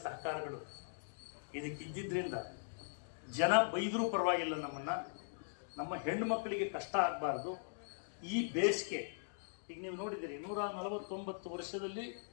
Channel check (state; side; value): silent; right; digital silence